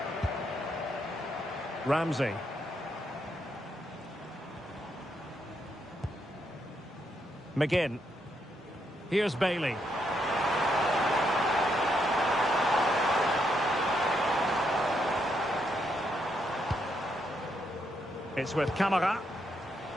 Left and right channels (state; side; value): normal; both; correlation 0.78